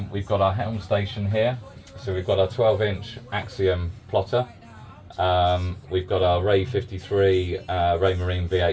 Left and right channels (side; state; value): both; identical; correlation 1.00